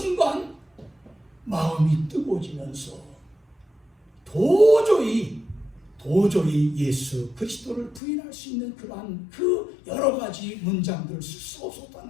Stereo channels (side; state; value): right; drops out; at 8.0 s